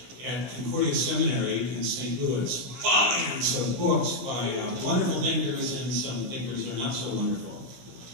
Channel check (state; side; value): late; left; 16 ms